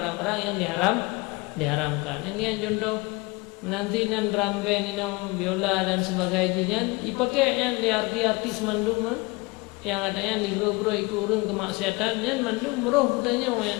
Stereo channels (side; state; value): right; quieter; 25.2 dB